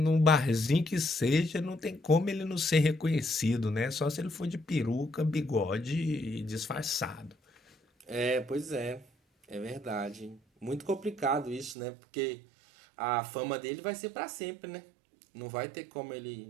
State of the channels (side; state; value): left; drops out; at 11.8 s